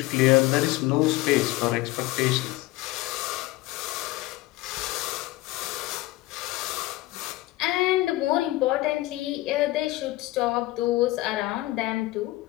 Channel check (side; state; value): right; quieter; 18.2 dB